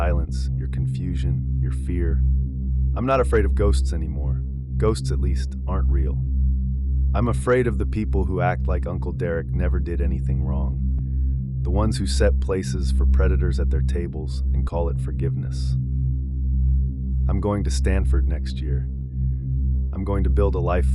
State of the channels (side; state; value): both; identical; correlation 1.00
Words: your confusion, your fear. I'm not afraid of ghosts anymore. Ghosts, at least, aren't real. I'm afraid of the people who act like Uncle Derek never did anything wrong. The ones who set places for predators at their tables and call it forgiveness. I'm going to Stanford next year. I'm going to build a life